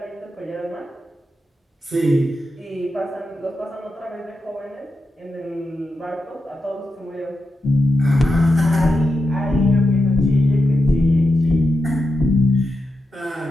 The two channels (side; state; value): both; normal; correlation 0.88